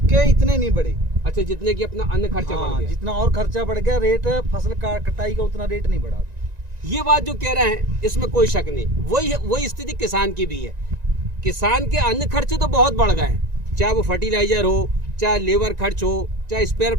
इतने नहीं बढ़े। अच्छा, जितने की अपना अन्य खर्चा बढ़ गया। जितना और खर्चा बढ़ गया, रेट फसल कटाई का उतना रेट नहीं बढ़ा। ये बात जो कह रहे हैं इसमें कोई शक नहीं, वही स्थिति किसान की भी है। किसान के अन्य खर्चे तो बहुत बढ़ गए हैं, चाहे वो फर्टिलाइजर हो, चाहे लेबर खर्च हो, चाहे स्पेयर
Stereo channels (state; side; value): late; left; 1.9 ms